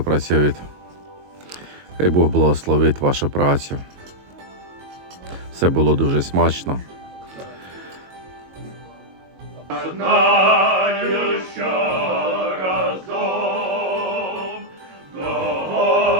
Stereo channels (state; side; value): late; left; 22 ms